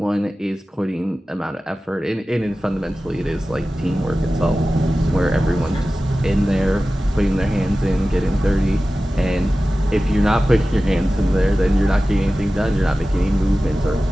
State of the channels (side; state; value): both; normal; correlation 0.95